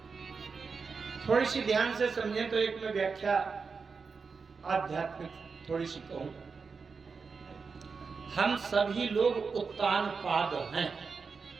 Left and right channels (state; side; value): quieter; left; 5.1 dB